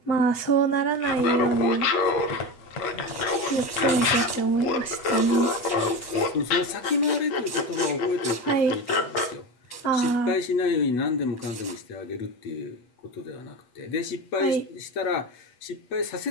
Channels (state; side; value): late; right; 8.2 ms